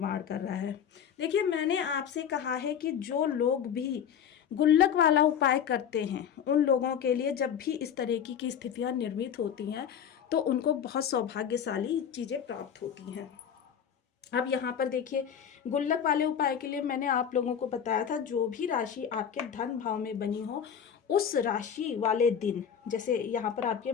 कर रहा है। देखिए, मैंने आपसे कहा है कि जो लोग भी गुल्लक वाला उपाय करते हैं, उन लोगों के लिए जब भी इस तरह की स्थितियां निर्मित होती हैं तो उनको बहुत सौभाग्यशाली चीज़ें प्राप्त होती हैं। अब यहाँ पर देखिए, गुल्लक वाले उपाय के लिए मैंने आप लोगों को बताया था, जो भी राशि आपके धन भाव में बनी हो उस राशि वाले दिन, जैसे यहाँ पर आपके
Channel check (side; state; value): right; quieter; 8.3 dB